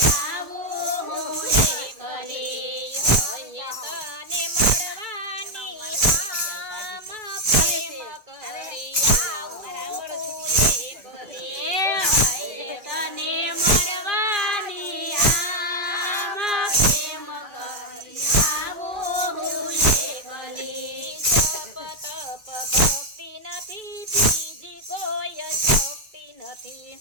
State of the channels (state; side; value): late; left; 2.2 ms